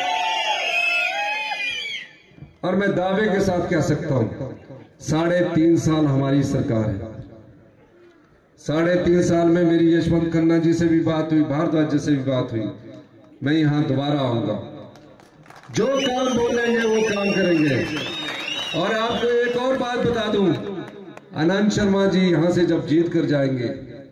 और मैं दावे के साथ कह सकता हूं, 3.5 साल हमारी सरकार है। 3.5 साल में मेरी यशवंत खन्ना जी से भी बात हुई, भारद्वाज जी से भी बात हुई। मैं यहां दोबारा आऊंगा, जो काम बोलेंगे वो काम करेंगे। और आपको एक और बात बता दूं, आनंद शर्मा जी यहां से जब जीत कर जाएंगे,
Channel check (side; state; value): both; identical; correlation 1.00